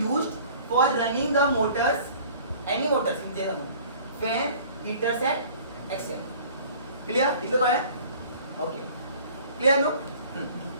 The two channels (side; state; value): both; inverted; correlation -0.49